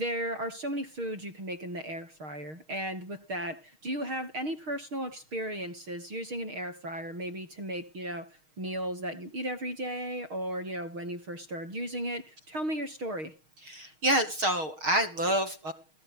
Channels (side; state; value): left; late; 6.4 ms